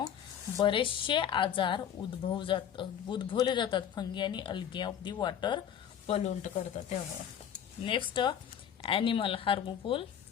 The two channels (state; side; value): quieter; right; 9.2 dB